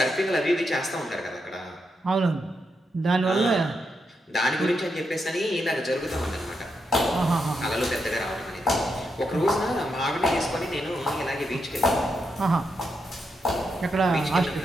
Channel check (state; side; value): normal; both; correlation 0.83